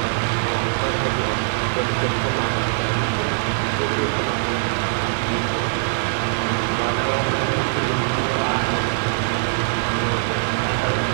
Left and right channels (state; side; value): silent; left; 64 dB below the other